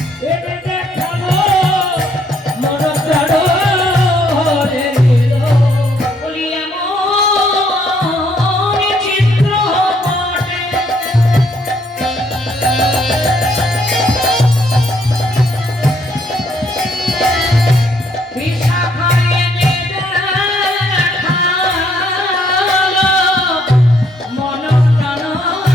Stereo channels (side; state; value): both; normal; correlation 0.69